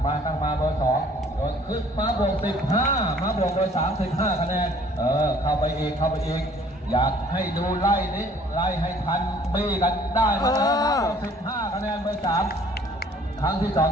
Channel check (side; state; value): both; normal; correlation 0.56